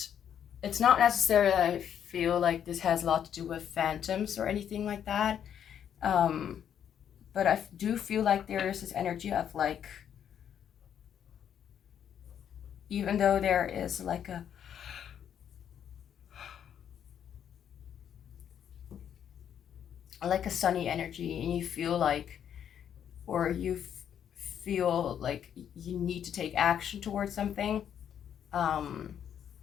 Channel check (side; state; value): right; quieter; 9.1 dB